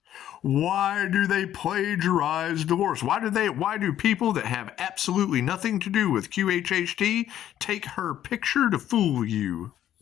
Why do they plagiarize Dolores? Why do people that have absolutely nothing to do with QHHT take her picture to fool you?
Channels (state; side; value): quieter; right; 11.5 dB